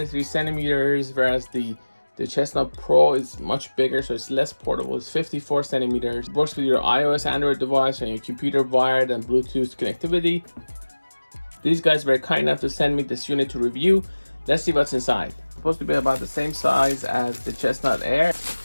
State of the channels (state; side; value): inverted; both; correlation -1.00